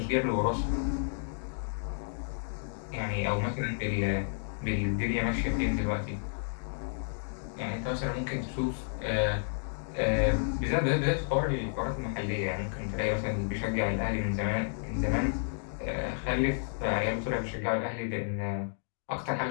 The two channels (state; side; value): silent; right; digital silence